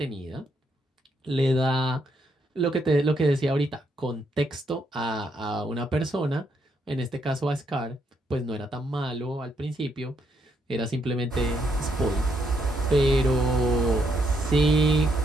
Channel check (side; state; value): both; normal; correlation 0.75